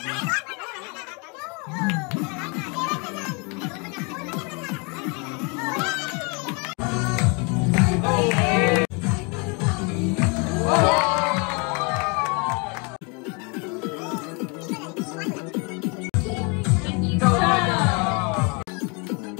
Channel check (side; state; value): right; quieter; 32.5 dB